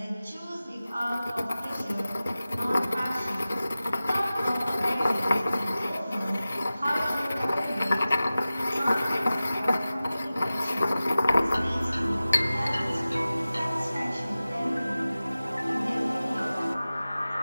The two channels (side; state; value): both; inverted; correlation -0.96